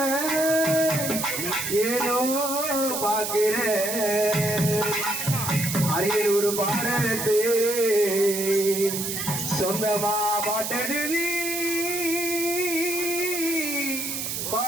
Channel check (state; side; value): noise; right; hiss, 3 dB below the sound